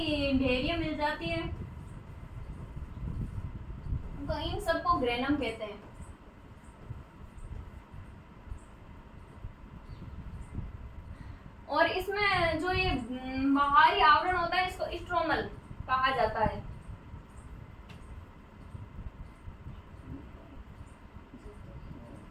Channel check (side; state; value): both; identical; correlation 1.00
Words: डेयरियां मिल जाती है तो इन सबको ग्रेनम कहते हैं। और इसमें जो ये बाहरी आवरण होता है इसको स्ट्रोमल कहा जाता है।